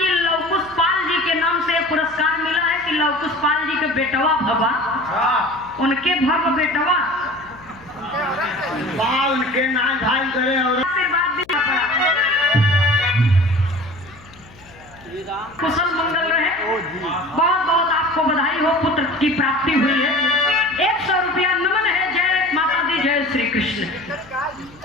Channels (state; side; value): noise; left; hum, 24 dB below the sound